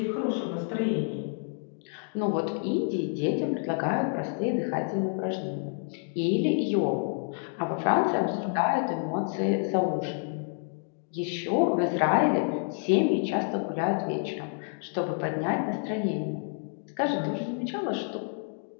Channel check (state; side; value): silent; right; 59 dB below the other